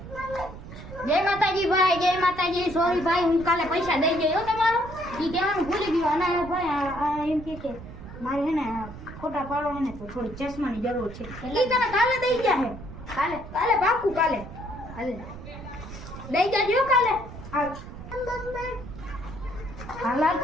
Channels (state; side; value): noise; right; rumble, 13 dB below the sound